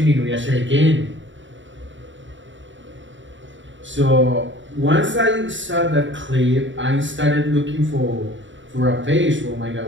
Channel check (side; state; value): left; late; 0.55 ms